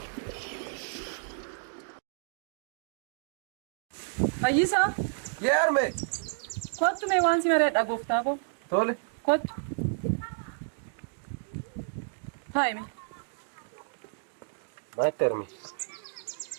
Ayisa, Yerme. quanto me wansi mare da goftavo? Tole. Quanto? Faimi. Matermi.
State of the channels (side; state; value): left; silent; digital silence